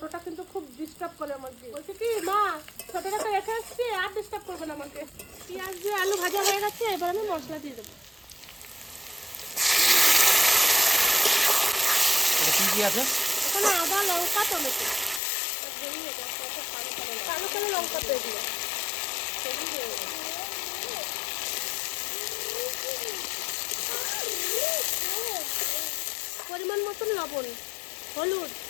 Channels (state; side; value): drops out; right; at 15.2 s